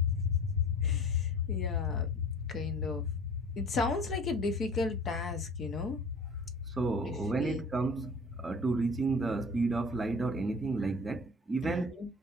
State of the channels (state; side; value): normal; both; correlation 0.43